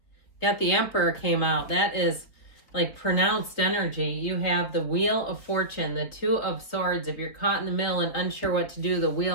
Got the Emperor came out. That is like pronounced energy. You have the Wheel of Fortune, the Two of Swords. If you're caught in the middle and unsure what to do, the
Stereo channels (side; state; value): right; late; 3.9 ms